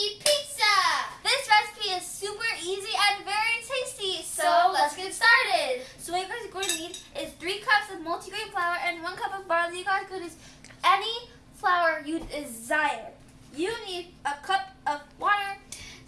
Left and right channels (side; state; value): both; identical; correlation 1.00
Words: pizza. This recipe is super easy and very tasty, so let's get started. So what you guys are going to need is 3 cups of multigrain flour and 1 cup of barley. You guys could use any flour you desire. You need a cup of water,